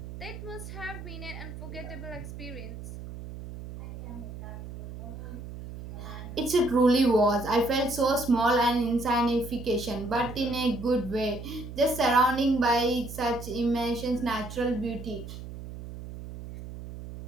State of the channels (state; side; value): noise; right; hum, 11 dB below the sound